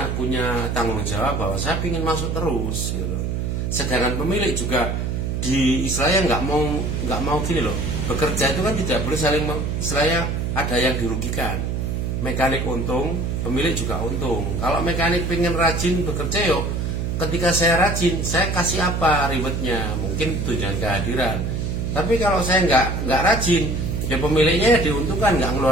punya tanggung jawab bahwa saya ingin masuk terus gitu. Sedangkan pemilik juga di istilahnya nggak mau gini loh, bekerja itu kan tidak boleh saling istilahnya ada yang dirugikan. Mekanik untung, pemilik juga untung. Kalau mekanik pengen rajin bekerja yuk, ketika saya rajin, saya kasih apa rewardnya? Mungkin tunjangan kehadiran. Tapi kalau saya nggak rajin, ya pemiliknya ya diuntungkan, nggak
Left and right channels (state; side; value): noise; right; hum, 1 dB below the sound